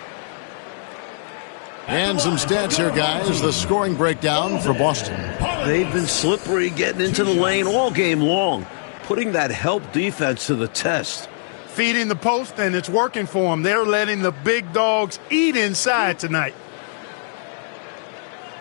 And some stats here, guys. The scoring breakdown for Boston. They've been slippery getting into the lane all game long, putting that help defense to the test. Feeding the post, and it's working for them. They're letting the big dogs eat inside tonight.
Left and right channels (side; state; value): right; silent; digital silence